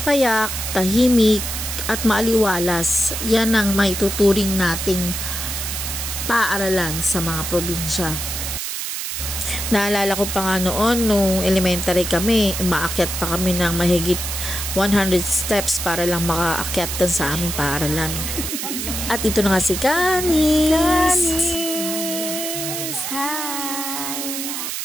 Payak, tahimik at maaliwalas, yan ang maituturing nating paaralan sa mga probinsya. Naalala ko pa nga noon, nung elementary kami, umaakyat pa kami ng mahigit 100 steps para lang makaakyat sa aming paaralan. At ito na nga si Canis! Canis! Hi!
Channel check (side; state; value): right; noise; hiss, 4 dB below the sound